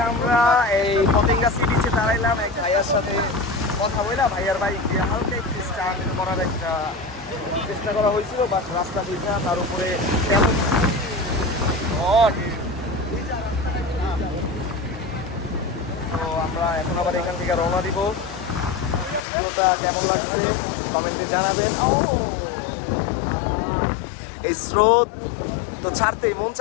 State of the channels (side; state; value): right; drops out; at 19.2 s